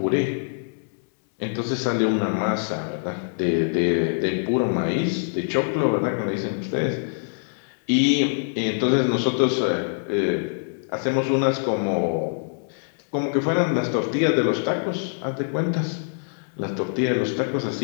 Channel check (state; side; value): silent; right; digital silence